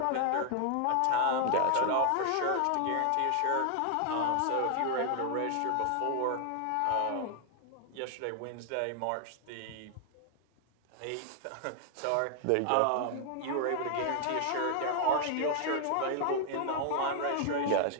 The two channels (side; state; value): both; different; correlation 0.00